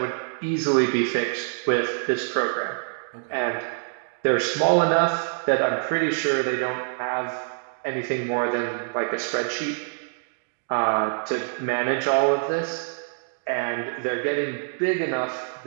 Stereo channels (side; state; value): left; silent; digital silence